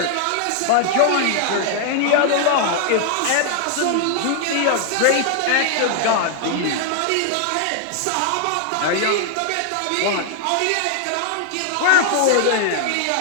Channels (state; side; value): different; both; correlation 0.00